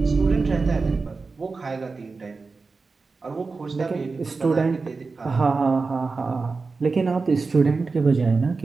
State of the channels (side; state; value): left; quieter; 4.2 dB